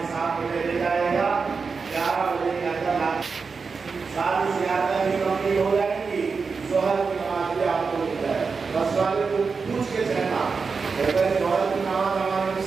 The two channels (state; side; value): quieter; left; 5.0 dB